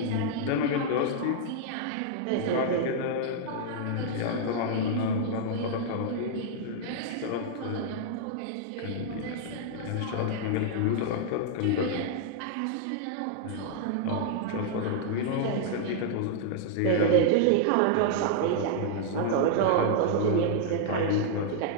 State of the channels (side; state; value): both; different; correlation -0.01